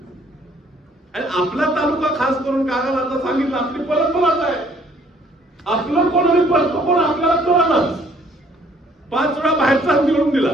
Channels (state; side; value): normal; both; correlation 0.61